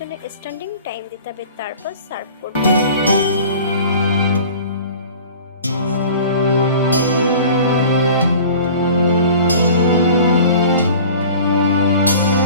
স্ট্যান্ডিং টাইম দিতে হবে, তারপর সার্ভ করব।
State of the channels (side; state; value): both; inverted; correlation -0.43